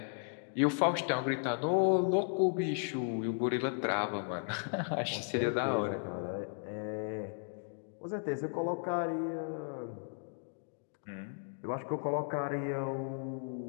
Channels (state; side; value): silent; right; 54 dB below the other